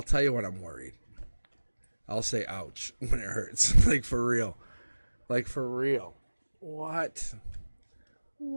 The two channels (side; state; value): both; inverted; correlation -1.00